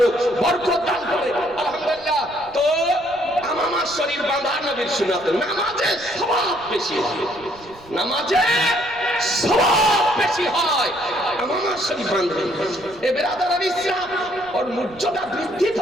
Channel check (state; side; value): noise; right; rumble, 23 dB below the sound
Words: বরকত দান করে, আলহামদুলিল্লাহ। তো আমামা শরীফ বাঁধা নবীর সুন্নাত। নামাজে সওয়াব বেশি হয়, নামাজে সওয়াব বেশি হয় আমামা শরীফ বাঁধলে। এ বেরাদারান ইসলাম, ওর মর্যাদা বৃদ্ধি